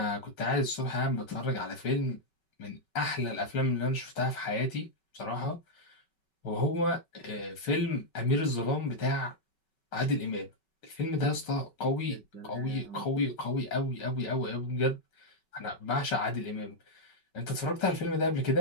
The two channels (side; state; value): right; late; 5.3 ms